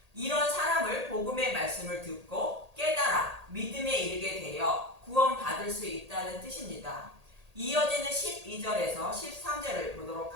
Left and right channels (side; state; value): left; late; 1.8 ms